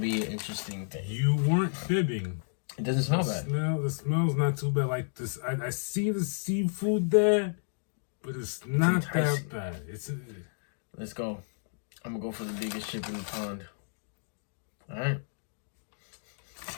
an interesting thing. You weren't fibbing. It doesn't smell bad. The smell's not too bad. Like this, I see the seafood there, but it's not enticing. that bad. It's Let's go. I'm gonna go for the biggest chip in the pond. Alright.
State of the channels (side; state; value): right; silent; digital silence